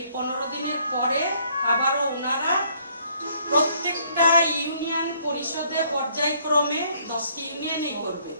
15 দিনের পরে আবারও ওনারা প্রত্যেকটা ইউনিয়ন পরিষদে পর্যায়ক্রমে 10টি ইউনিয়নেই করবে।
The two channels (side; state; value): both; inverted; correlation -0.65